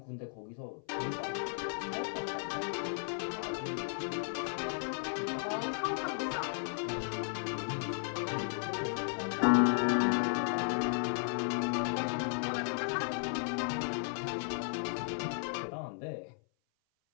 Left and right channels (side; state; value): right; silent; 54 dB below the other